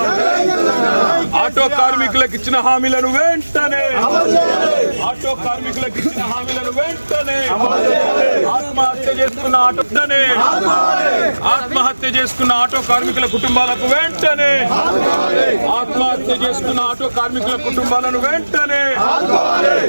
ఆటో కార్మికులకు ఇచ్చిన హామీలను వెంటనే ఆటో కార్మికులకు ఇచ్చిన హామీలను వెంటనే ఆత్మహత్య చేసుకున్న ఆత్మహత్య చేసుకున్న ఆటో కార్మికుల కుటుంబాలకు వెంటనే ఆత్మహత్య చేసుకున్న ఆటో కార్మికుల కుటుంబాలను వెంటనే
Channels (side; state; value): both; inverted; correlation -1.00